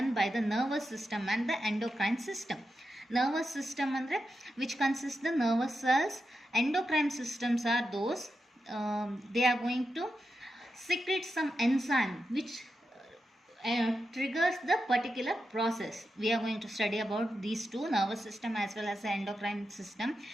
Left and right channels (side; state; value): both; normal; correlation 0.88